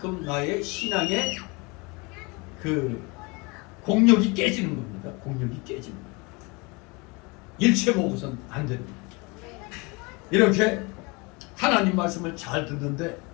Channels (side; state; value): right; quieter; 27.6 dB